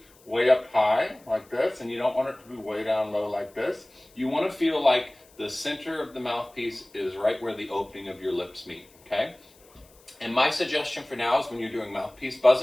way up high like this, and you don't want it to be way down low like this. You want to feel like the center of the mouthpiece is right where the opening of your lips meet, okay? And my suggestion for now is when you're doing mouthpiece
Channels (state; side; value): noise; left; hiss, 28 dB below the sound